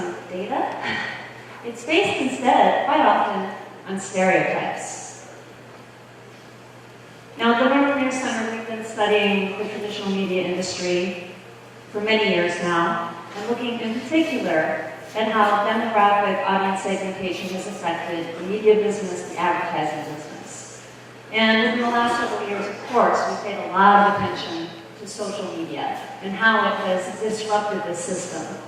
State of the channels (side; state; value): both; identical; correlation 1.00